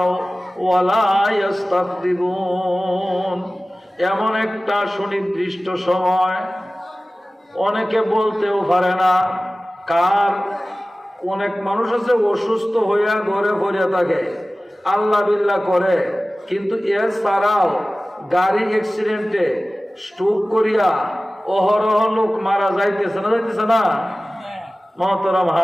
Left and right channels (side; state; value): both; normal; correlation 0.97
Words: ওয়া লা ইস্তাকদিমুন। এমন একটা সুনির্দিষ্ট সময়, অনেকে বলতেও পারে না কার। অনেক মানুষ আছে অসুস্থ হইয়া ঘরে পড়িয়া থাকে, আল্লাহ বিল্লাহ করে, কিন্তু এছাড়াও গাড়ি অ্যাক্সিডেন্টে স্ট্রোক করিয়া অহরহ লোক মারা যাইতেছে না? মহতরম